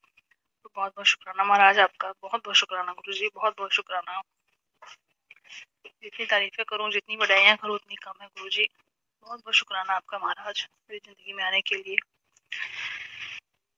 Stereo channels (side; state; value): both; identical; correlation 1.00